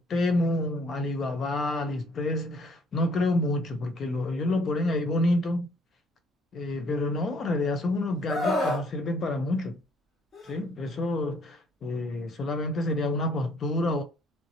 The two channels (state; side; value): normal; both; correlation 0.62